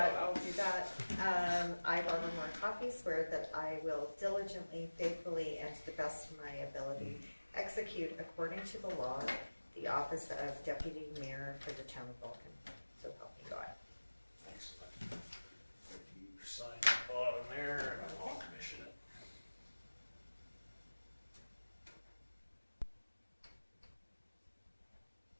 on it. I'll do that. I, Barbara Moore Coffey, swear that I will diligently, faithfully, and to the best of my ability execute according to the law the office of deputy mayor for the town of Vulcan. So help me God. Excellent. If you sign the bottom there, and I'll commission it.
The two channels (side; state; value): both; inverted; correlation -1.00